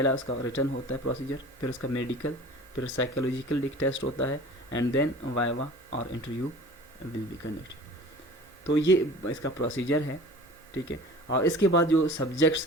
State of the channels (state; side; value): normal; both; correlation 0.42